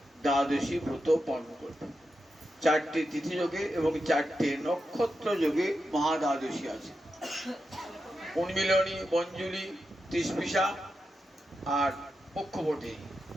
দ্বাদশী ব্রত পালন করবে। চারটি তিথি যোগে এবং চারটে নক্ষত্র যোগে মহাদ্বাদশী আছে। উন্মিলনী, মঞ্জুলি, তৃষ্পিষা আর পক্ষবর্তী,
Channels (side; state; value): both; normal; correlation 0.88